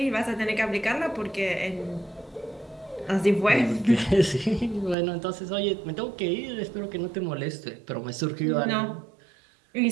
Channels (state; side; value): drops out; left; at 5.0 s